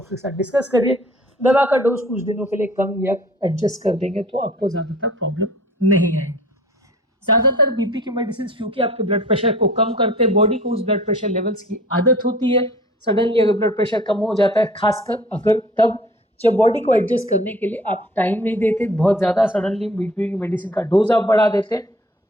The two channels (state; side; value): normal; both; correlation 0.48